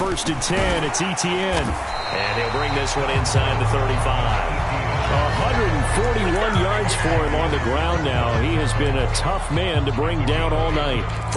1st and 10, it's Etienne. And he'll bring this one inside the 35. 141 yards for him on the ground now. He has been a tough man to bring down all night.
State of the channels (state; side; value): identical; both; correlation 1.00